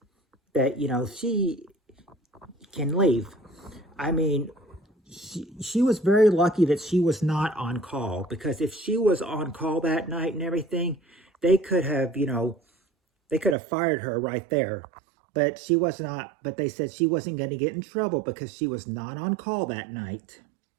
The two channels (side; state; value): left; drops out; at 13.6 s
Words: that, she can leave. She was very lucky that she was not on call, because if she was on call that night and everything, they could have, they could have fired her right there. But she was not, but they said she wasn't going to get in trouble because she was not on call that night.